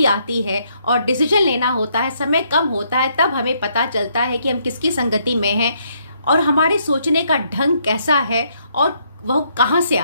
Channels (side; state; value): both; inverted; correlation -0.72